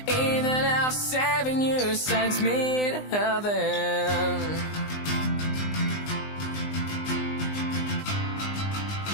even if saving you sends me to heaven.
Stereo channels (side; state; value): right; late; 20 ms